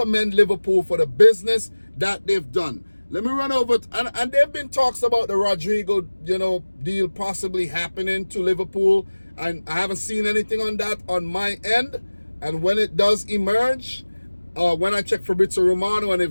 Liverpool for the business that they've done. Let me run over, and there have been talks about the Rodrigo, you know, deal possibly happening to Liverpool, and I haven't seen anything on that on my end. And when it does emerge, when I check Fabrizio Romano, and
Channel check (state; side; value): inverted; both; correlation -1.00